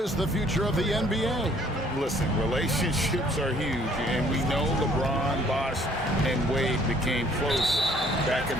the future of the NBA? Listen, relationships are huge, and we know LeBron, Bosh, and Wade became close back in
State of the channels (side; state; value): both; normal; correlation 0.60